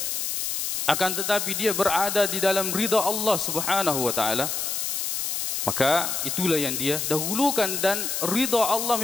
akan tetapi dia berada di dalam ridha Allah Subhanahu wa taala, maka itulah yang dia dahulukan, dan ridha Allah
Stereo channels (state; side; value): noise; left; hiss, 1 dB below the sound